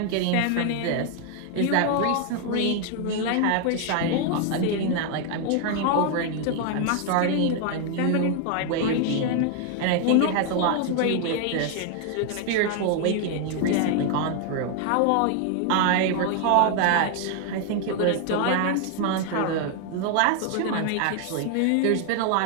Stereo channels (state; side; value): different; both; correlation 0.00